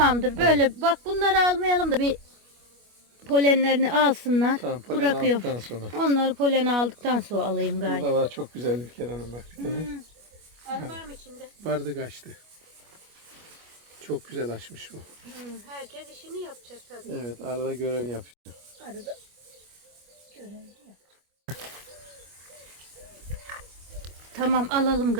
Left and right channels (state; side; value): late; left; 25 ms